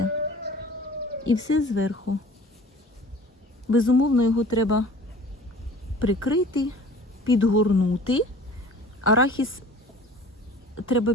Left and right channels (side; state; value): both; normal; correlation 0.45